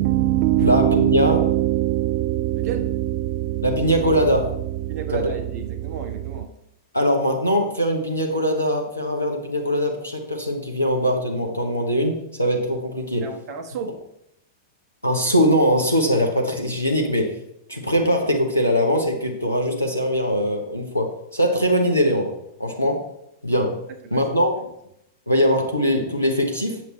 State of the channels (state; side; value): inverted; both; correlation -0.46